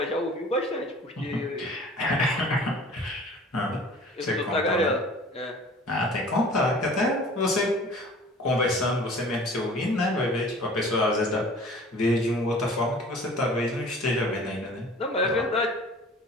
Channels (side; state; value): both; normal; correlation 0.46